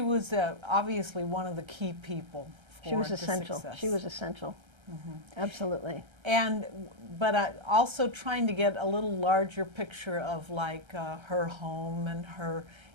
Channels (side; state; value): left; late; 1.3 ms